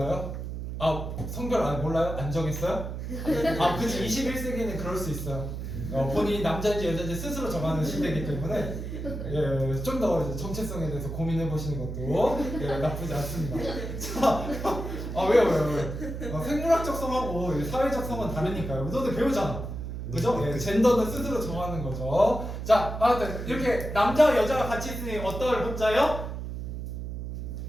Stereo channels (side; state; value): right; noise; hum, 6 dB below the sound